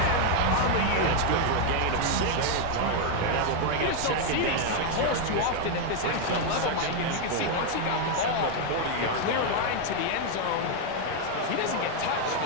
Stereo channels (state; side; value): different; both; correlation 0.01